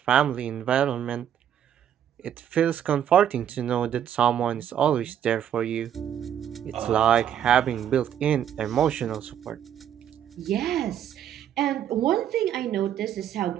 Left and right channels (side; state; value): left; quieter; 9.8 dB